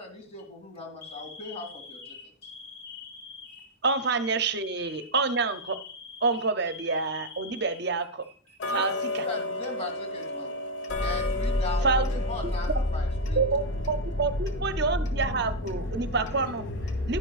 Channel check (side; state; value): both; normal; correlation -0.03